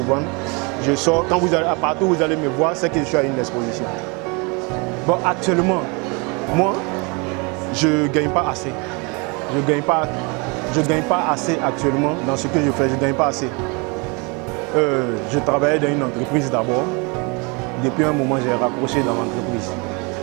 vendre. Je sors, quand vous allez, partout où vous allez me voir, c'est que je suis à une exposition. Bon, actuellement, moi, je ne gagne pas assez. Je ne gagne pas assez actuellement dans ce que je fais, je ne gagne pas assez. Je travaillais dans une entreprise d'abord. Depuis un moment, j'ai raccroché dans l'entreprise.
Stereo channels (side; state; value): left; quieter; 30.5 dB